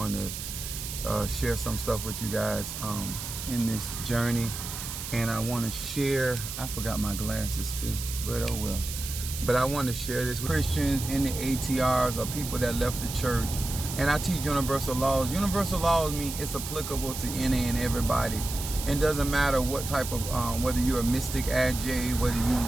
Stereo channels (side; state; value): right; noise; hiss, 7 dB below the sound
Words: to share some stuff with you guys in this journey, and I want to share. I forgot my glasses too, but oh well. But I want to share this with Christians in the ATRs or people that left the church. And I teach universal laws. Universal laws mean it's applicable to any and everybody. It doesn't matter what type of whether you're a mystic AJ, whether